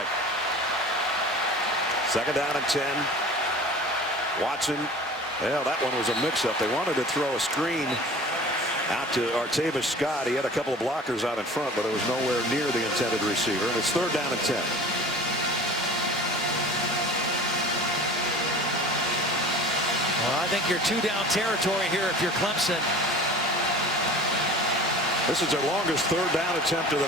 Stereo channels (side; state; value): both; normal; correlation 0.41